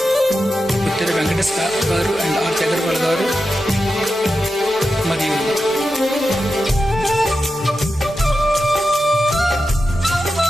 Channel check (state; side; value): normal; both; correlation 0.90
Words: ఉత్తర వెంకటేష్ గారు అండ్ ఆర్ అగర్వాల్ గారు మరియు